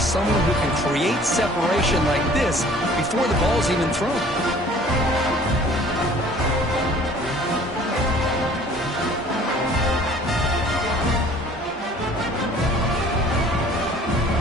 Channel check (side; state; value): both; normal; correlation 0.51